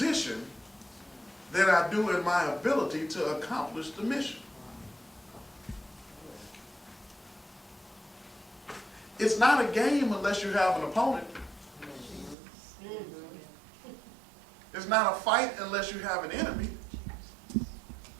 than I do in my ability to accomplish the mission. It's not a game unless you have an opponent. It's not a fight unless you have an enemy.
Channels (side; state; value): left; drops out; at 12.4 s